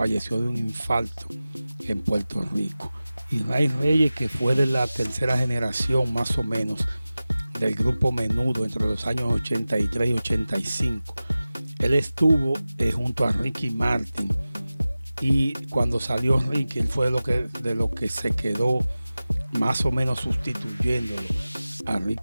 de un infarto en Puerto Rico. Y Ray Reyes, que fue de la tercera generación más o menos del grupo Menudo entre los años 83 y 85, él estuvo junto a Ricky Martin, y cuando salió Ricky, él fue de lo que se quedó más o menos sustituyéndolo a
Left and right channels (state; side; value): inverted; both; correlation -0.96